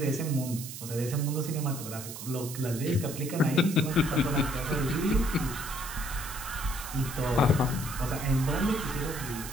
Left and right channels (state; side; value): noise; right; hiss, 10 dB below the sound